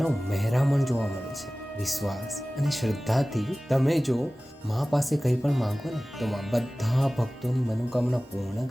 મહેરામણ જોવા મળે છે. વિશ્વાસ અને શ્રદ્ધાથી તમે જો માં પાસે કંઈ પણ માંગો ને તો માં બધા ભક્તોની મનોકામના પૂર્ણ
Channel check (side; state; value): both; normal; correlation 0.97